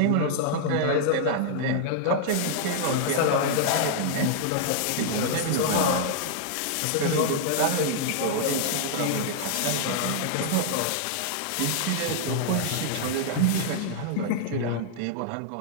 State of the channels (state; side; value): different; both; correlation -0.01